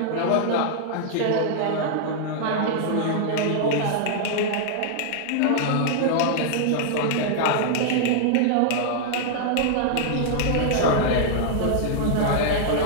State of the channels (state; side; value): different; both; correlation -0.01